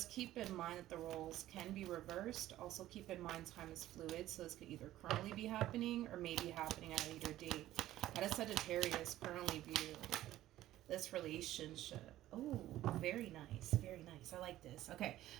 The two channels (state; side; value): quieter; left; 14.3 dB